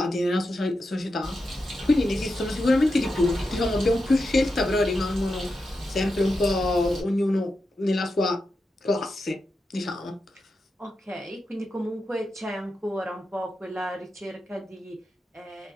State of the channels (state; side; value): normal; both; correlation 0.89